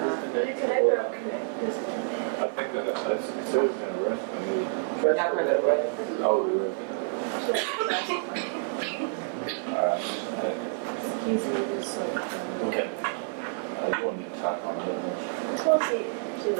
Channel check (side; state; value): left; silent; 58 dB below the other